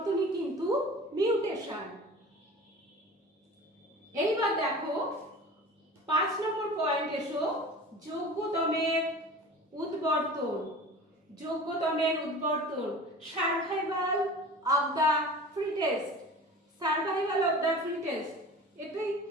কিন্তু মিউটেশন। এইবার দেখো 5 নম্বর পয়েন্ট এসো, যোগ্যতমের উদ্বর্তন। যোগ্যতমের উদ্বর্তন, survival of the fittest. Survival of the fittest, এটাই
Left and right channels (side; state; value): both; normal; correlation 0.39